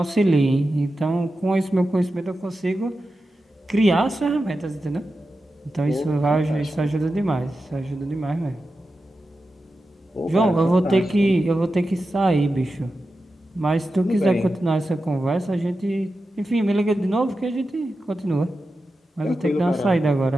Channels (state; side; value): normal; both; correlation 0.91